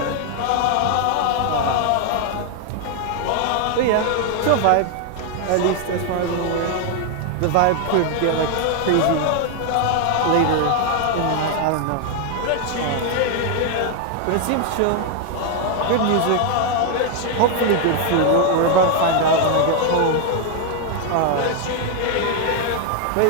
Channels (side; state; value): both; different; correlation 0.00